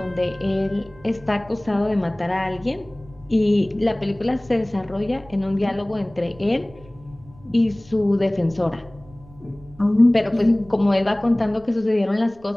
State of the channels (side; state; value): right; noise; rumble, 24 dB below the sound